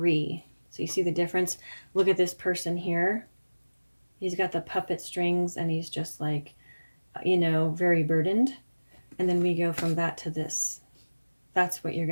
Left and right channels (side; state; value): both; inverted; correlation -1.00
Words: So you see the difference? Look at this person here. He's got the puppet strings, and he's just like, you know, very burdened. And then we go from that to this. That's what you're